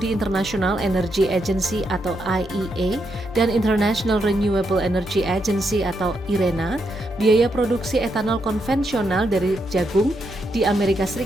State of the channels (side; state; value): both; normal; correlation 0.81